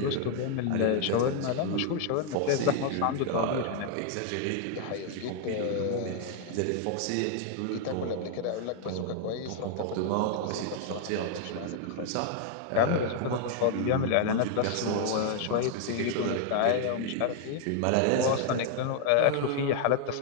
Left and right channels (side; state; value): both; different; correlation 0.00